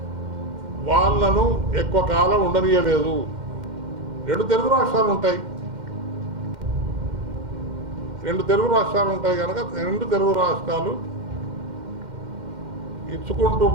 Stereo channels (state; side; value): late; left; 2.1 ms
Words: వాళ్ళను ఎక్కువ కాలం ఉండనీయలేదు. 2 తెలుగు రాష్ట్రాలు ఉంటాయి. 2 తెలుగు రాష్ట్రాలు ఉంటాయి కనుక 2 తెలుగు రాష్ట్రాలు ఇచ్చుకుంటూ